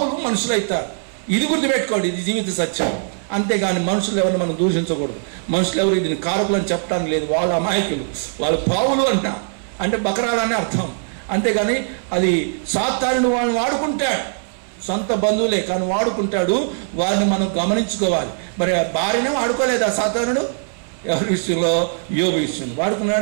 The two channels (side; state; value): left; silent; digital silence